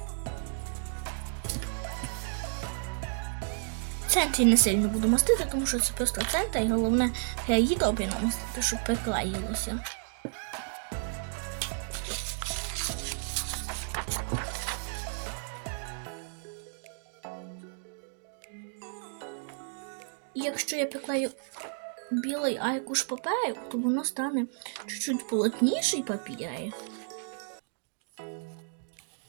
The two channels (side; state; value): left; silent; digital silence